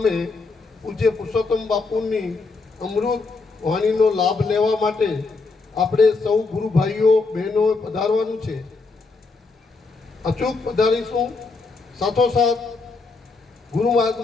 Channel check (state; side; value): quieter; right; 4.0 dB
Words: પૂજ્ય પુરુષોત્તમ બાપુની અમૃત વાણીનો લાભ લેવા માટે આપણે સૌ ગુરુ ભાઈઓ બહેનો પધારવાનું છે. અચૂક પધારીશું. સાથોસાથ ગુરુ